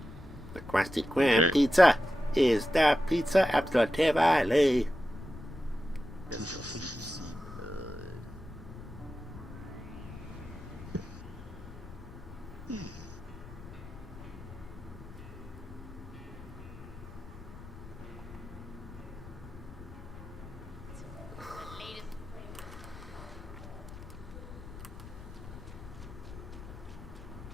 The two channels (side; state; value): left; noise; rumble, 15 dB below the sound